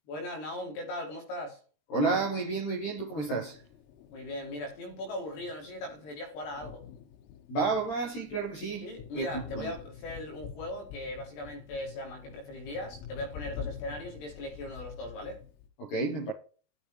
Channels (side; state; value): right; late; 20 ms